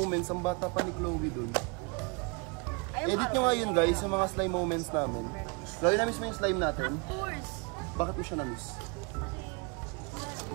ang bata pa ni Chloe dun. Edit nyo nga yun guys, yung mga slime moments namin. Chloe, na-miss mo yung slime natin? Of course. Bakit mo siya na-miss?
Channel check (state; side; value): quieter; left; 32.3 dB